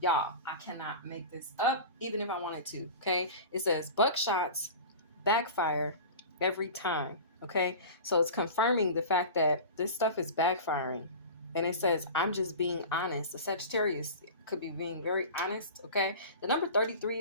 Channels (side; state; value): both; inverted; correlation -0.33